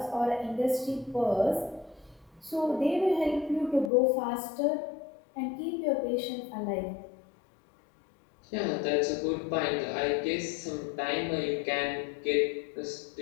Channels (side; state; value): right; drops out; at 3.9 s